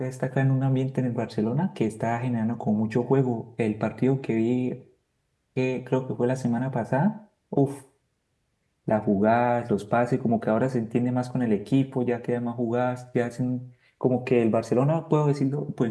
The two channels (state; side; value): identical; both; correlation 1.00